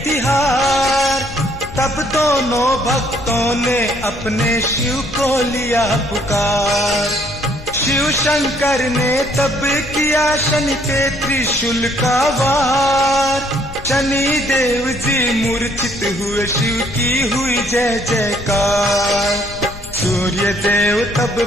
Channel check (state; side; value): noise; left; rumble, 15 dB below the sound